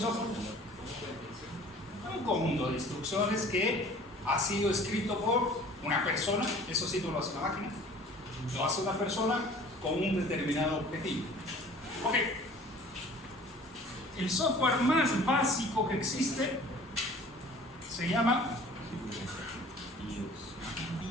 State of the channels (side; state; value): both; normal; correlation 0.49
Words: Un conjunto de instrucciones que ha sido escrito por una persona, eso sí no lo hace una máquina, lo hace una persona con un determinado objetivo. Ok. El software más básico que existe se llama